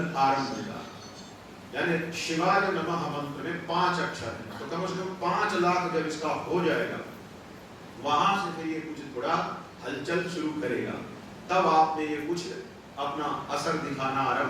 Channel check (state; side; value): identical; both; correlation 1.00